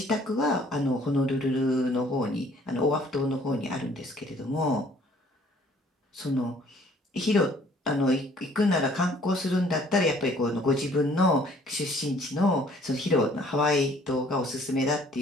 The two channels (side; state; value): both; normal; correlation 0.58